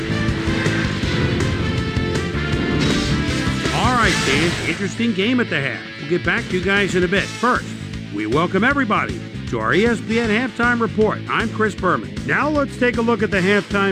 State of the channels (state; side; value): identical; both; correlation 1.00